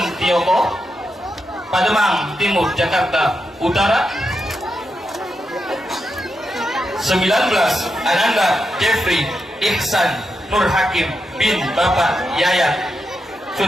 Pademang Timur Jakarta Utara. 19. Ananda Jeffrey Ihsan Nur Hakim bin Bapak Yayat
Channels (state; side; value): normal; both; correlation 0.85